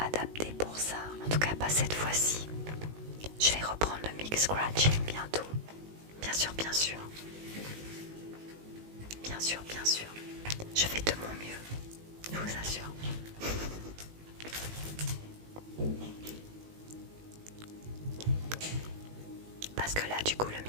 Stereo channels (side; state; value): left; late; 19 ms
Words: pour ça. En tout cas, pas cette fois-ci. Je vais reprendre le mix scratching bientôt. Bien sûr, bien sûr. Bien sûr, bien sûr. Je fais de mon mieux, je vous assure. Parce que là, du coup, le